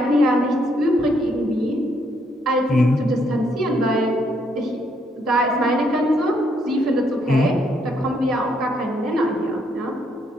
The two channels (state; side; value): normal; both; correlation 0.73